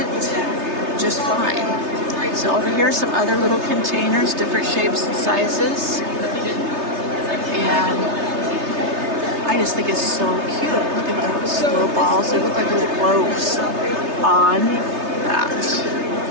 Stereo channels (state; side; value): late; left; 3.3 ms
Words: just fine. So over here are some other little containers, different shapes and sizes. And I just think it's so cute. Look at those little balls. They look like little globes on that.